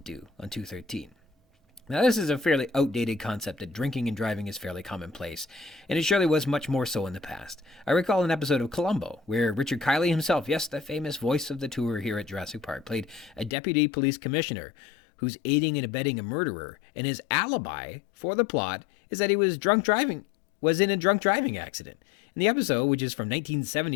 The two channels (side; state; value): right; drops out; at 13.5 s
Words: on 213. Now, this is a fairly outdated concept that drinking and driving is fairly commonplace, and it surely was much more so in the past. I recall an episode of Columbo, where Richard Kiley himself, yes, the famous voice of the tour here at Jurassic Park, played a deputy police commissioner who's aiding and abetting a murderer, and his alibi for the plot is that he was in a drunk driving accident. In the episode, which is from